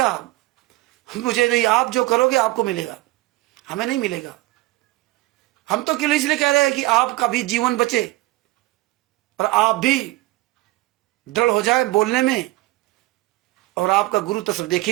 मुझे नहीं। आप जो करोगे आपको मिलेगा, हमें नहीं मिलेगा। हम तो केवल इसलिए कह रहे हैं कि आपका भी जीवन बचे और आप भी दृढ़ हो जाए बोलने में। और आपका गुरु तो सब देख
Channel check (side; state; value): left; quieter; 19.5 dB